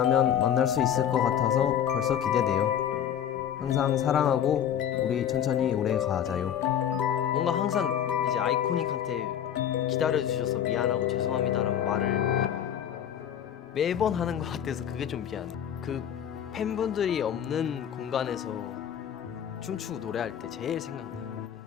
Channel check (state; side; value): quieter; right; 9.4 dB